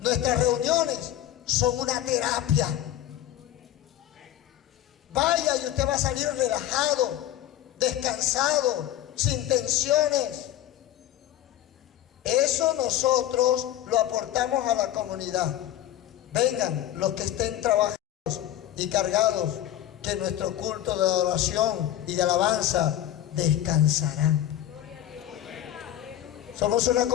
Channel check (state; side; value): quieter; right; 12.4 dB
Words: reuniones son una terapia. Vaya y usted va a salir relajado, descansado, sin tensiones. Eso nosotros lo aportamos a la comunidad. Vengan los que estén trabajados y cargados, que nuestro culto de adoración y de alabanza descansarán. Somos una